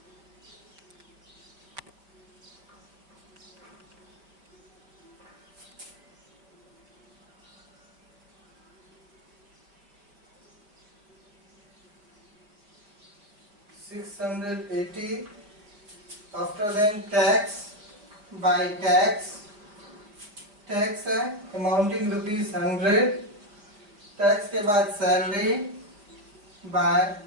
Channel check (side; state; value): left; late; 4.9 ms